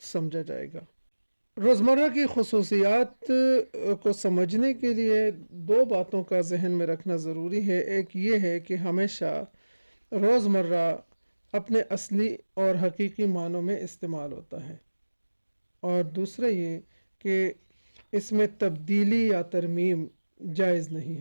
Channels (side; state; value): both; inverted; correlation -1.00